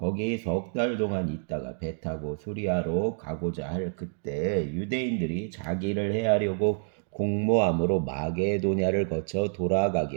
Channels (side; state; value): left; silent; digital silence